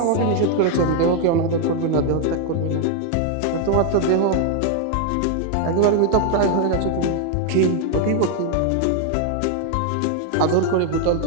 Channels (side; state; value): both; different; correlation 0.00